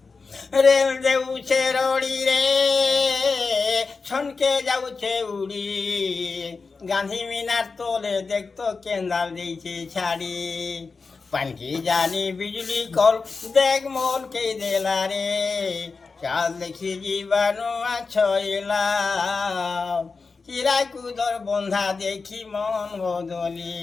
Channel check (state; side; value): quieter; right; 4.5 dB